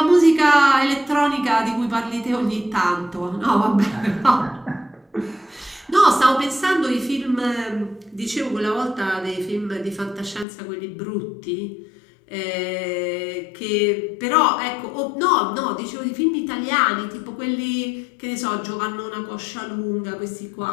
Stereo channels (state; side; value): drops out; right; at 10.5 s